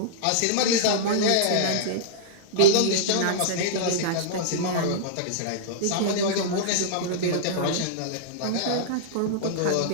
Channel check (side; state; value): both; different; correlation -0.02